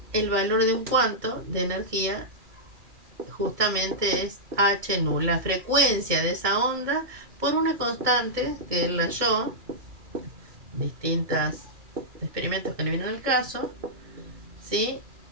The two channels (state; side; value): late; left; 2.4 ms